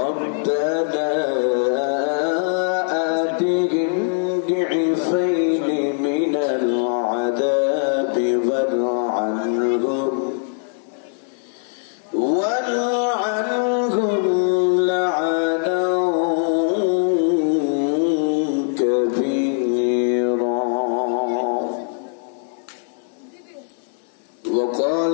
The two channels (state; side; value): silent; right; digital silence